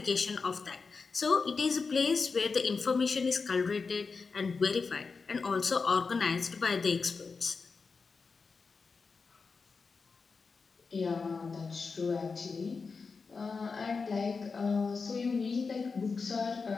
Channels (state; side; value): quieter; right; 4.7 dB